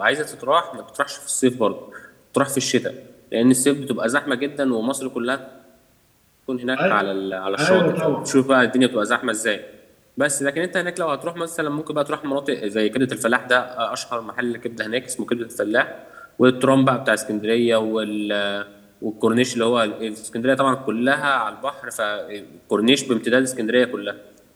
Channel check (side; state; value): both; identical; correlation 1.00